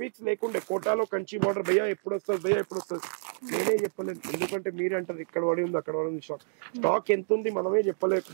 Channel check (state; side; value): silent; left; digital silence